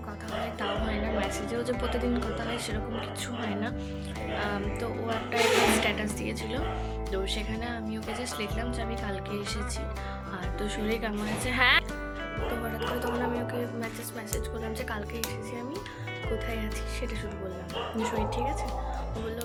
কথা হয় তাও হয় না, মেসেজেও যে প্রতিদিন কথা হয় সেরকম কিছু হয় না। তো ও একটা স্ট্যাটাস দিয়েছিল, তো সেখানে আমি ওকে জাস্ট লিখলাম যে আমি কালকে এসেছি, আর তো শরীর কেমন আছে। হ্যাঁ তো হঠাৎ করে তখন আমি ওকে মেসেজ করলাম যে কালকে এসেছি আমি, কোথায় আছি সেটা শুধু বললাম, শরীর ঠিক আছে? ও বললো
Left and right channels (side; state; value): both; identical; correlation 1.00